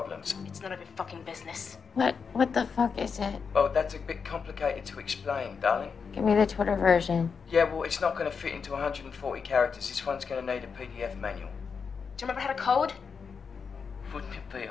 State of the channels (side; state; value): right; quieter; 5.8 dB